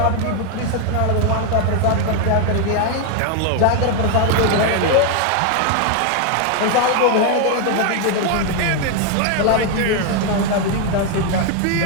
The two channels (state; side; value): different; both; correlation 0.01